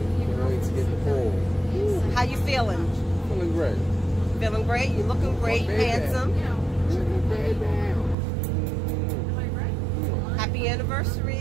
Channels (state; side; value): drops out; left; at 8.2 s